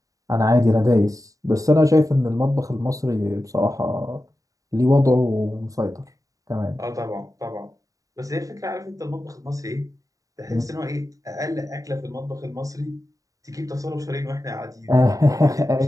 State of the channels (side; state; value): left; late; 0.16 ms